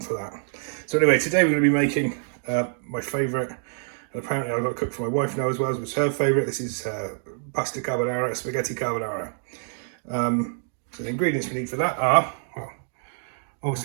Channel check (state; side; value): silent; left; 61 dB below the other